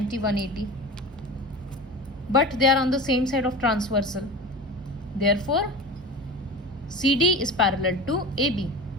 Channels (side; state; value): both; normal; correlation 0.32